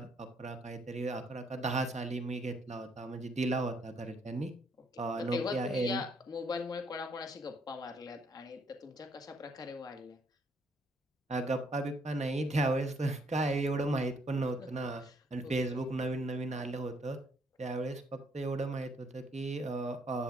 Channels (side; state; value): both; normal; correlation 0.68